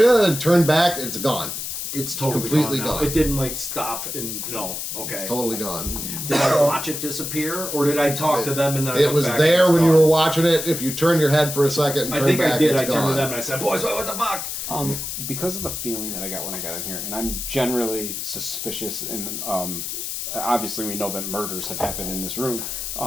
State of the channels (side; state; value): left; noise; hiss, 5 dB below the sound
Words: back. It's gone. It's totally completely gone. Now. gone. It didn't like stop and no. Okay. It's totally gone. Did I watch it disappear, or did I talk to them and then I It looked was back there and when it's you were gone? watching it. If you turn your head for a second and I turn think back, I did. it's I turned gone. to them and I said, "Boys, what the fuck?" Because of the feeling that I got when I got in here, and I'm generally suspicious, and obviously we know that murders have happened in this room.